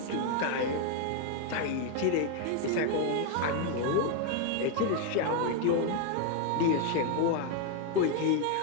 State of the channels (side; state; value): both; different; correlation 0.01